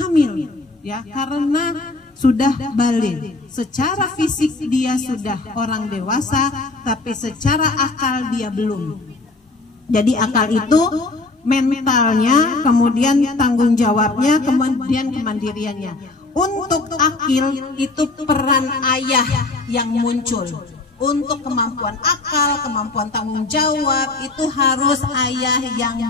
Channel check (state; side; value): quieter; right; 3.4 dB